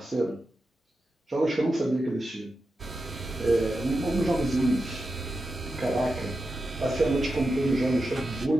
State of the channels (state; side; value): normal; both; correlation 0.89